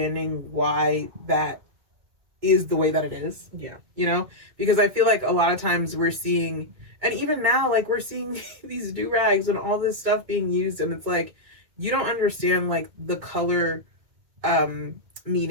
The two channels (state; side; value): late; left; 2.1 ms